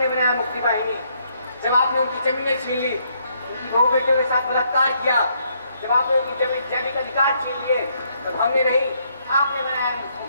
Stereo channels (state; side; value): inverted; both; correlation -0.72